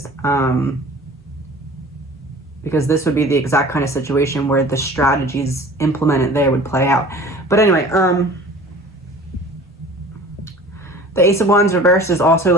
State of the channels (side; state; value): both; normal; correlation 0.44